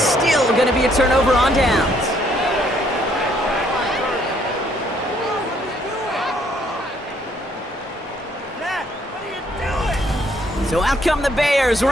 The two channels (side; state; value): both; normal; correlation 0.67